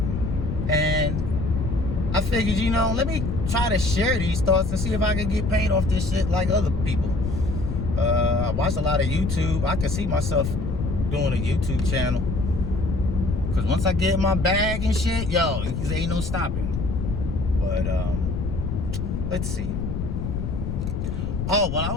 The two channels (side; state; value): left; noise; rumble, 3 dB below the sound